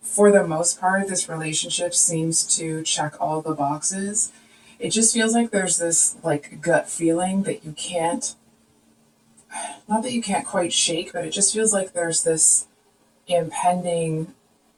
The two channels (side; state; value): both; identical; correlation 1.00